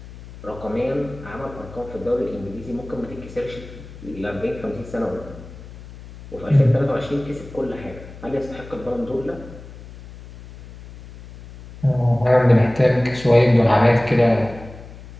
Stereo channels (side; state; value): left; noise; hum, 16 dB below the sound